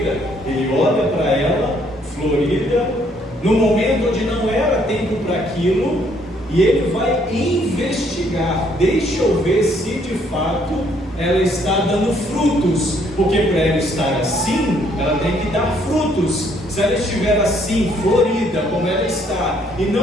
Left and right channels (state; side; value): normal; both; correlation 0.67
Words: Ele olha para ela, florida, no momento onde não era tempo para aquilo, e Ele vai investigar. Deixa eu ver se de fato ela está dando frutos, porque para ela estar assim, ela tem que dar frutos. Se ela estiver assim, florida, como ela está, e